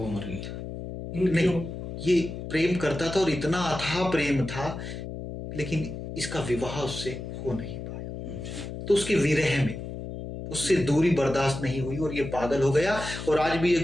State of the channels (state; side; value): noise; left; hum, 8 dB below the sound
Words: मर गई। नहीं ये प्रेम करता था और इतना अथाह प्रेम था, लेकिन इसका विवाह उससे हो नहीं पाया। तो उसके विरह में उससे दूरी बर्दाश्त नहीं हुई और ये पागल हो गया। और आज भी ये